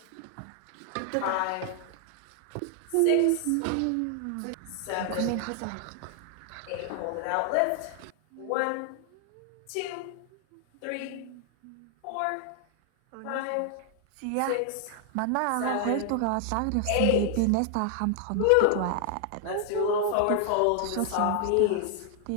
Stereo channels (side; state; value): both; different; correlation 0.00